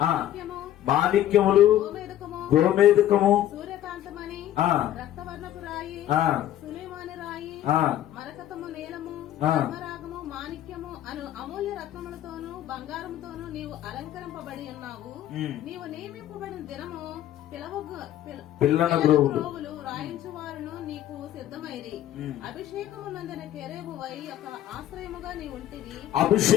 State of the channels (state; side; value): quieter; right; 12.4 dB